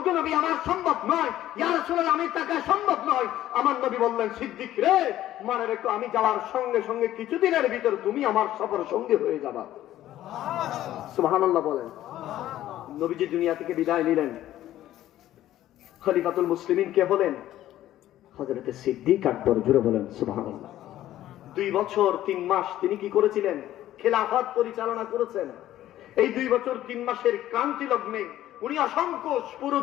নবী, আমার সম্ভব নয়। ইয়া রাসূলুল্লাহ, আমি তাকে সম্ভব নয়। আমার নবী বললেন, সিদ্দিক রে, মনে রেখো, আমি যাওয়ার সঙ্গে সঙ্গে কিছুদিনের ভিতর তুমি আমার সফর সঙ্গী হয়ে যাবা। সুবহানাল্লাহ বলেন। নবীজি দুনিয়া থেকে বিদায় নিলেন। খলিফাতুল মুসলিমিন কে হলেন? হযরতে সিদ্দিক আকবর। জোরে বলেন সুবহানাল্লাহ। 2 বছর 3 মাস তিনি কি করেছিলেন? খেলাফত পরিচালনা করেছেন। এই 2 বছর 3 মাসের ক্রান্তি লগ্নে উনি অসংখ্য পুরো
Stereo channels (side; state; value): right; quieter; 13.4 dB